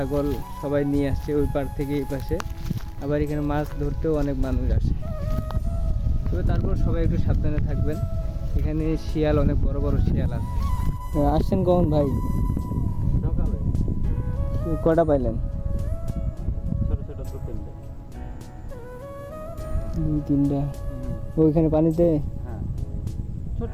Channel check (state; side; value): identical; both; correlation 1.00